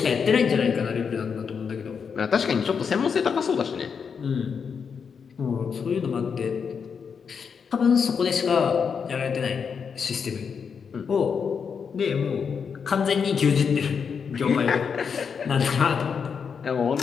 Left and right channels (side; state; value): right; quieter; 6.3 dB